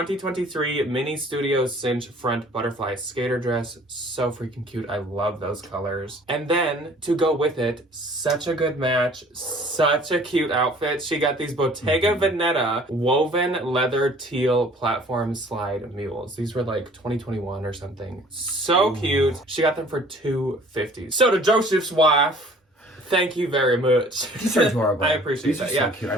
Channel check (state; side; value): normal; both; correlation 0.52